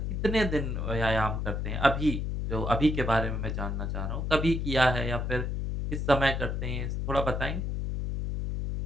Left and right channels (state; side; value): noise; left; hum, 2 dB below the sound